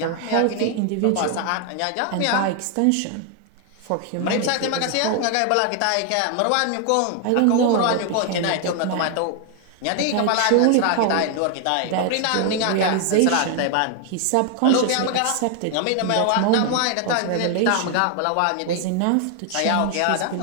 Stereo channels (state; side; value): different; both; correlation 0.00